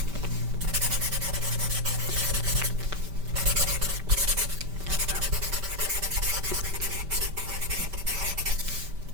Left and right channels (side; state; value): left; late; 5.1 ms